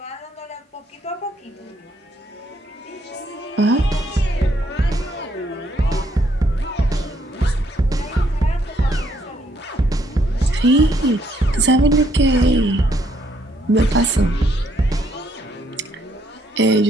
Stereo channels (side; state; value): both; normal; correlation 0.70